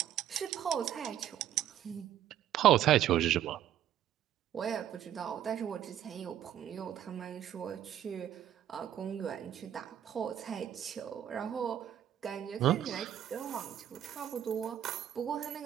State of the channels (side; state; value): left; quieter; 11.0 dB